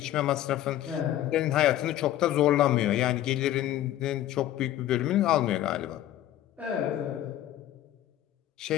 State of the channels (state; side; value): quieter; right; 13.0 dB